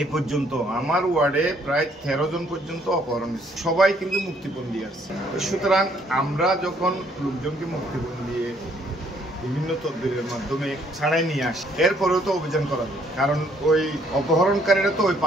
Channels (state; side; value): normal; both; correlation 0.66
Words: এই পর্যন্ত আমার ওয়ার্ডে প্রায় 13 জন পর্যন্ত অপহরণ হয়েছে, সবাই কিন্তু মুক্তিপণ দিয়ে আসছে। সুতরাং আমরা যখন লোকজনকে মুক্তিপণ দিয়ে বিভিন্ন তদবিরের মাধ্যমে ছাড়াই নিয়ে আসি, এরপরেও তো অভিযান করা যায়, কারণ ওই অপহরণকারীরা তো ওই